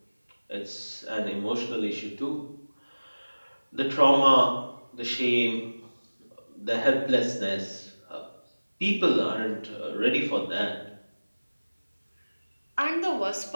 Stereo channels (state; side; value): inverted; both; correlation -1.00